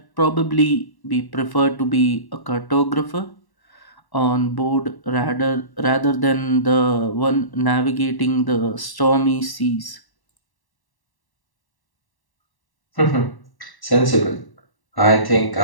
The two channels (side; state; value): right; late; 1.1 ms